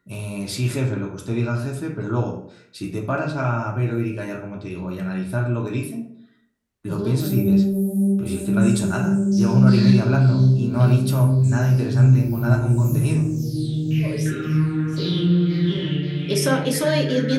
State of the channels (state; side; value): identical; both; correlation 1.00